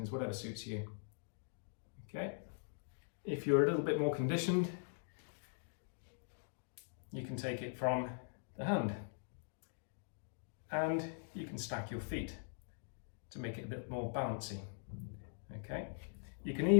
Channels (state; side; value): silent; right; digital silence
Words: whatever suits you. Okay. If you're a little bit more conditioned, you can take it from the hand, and you can stack your feet to make it a bit more bouncy. Okay, you can